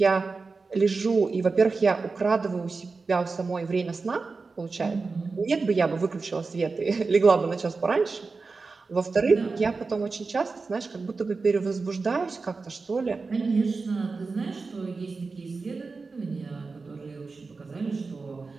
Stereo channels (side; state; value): left; quieter; 4.2 dB